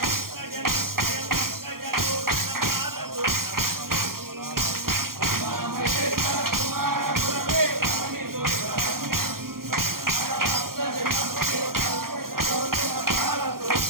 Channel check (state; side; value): late; left; 0.92 ms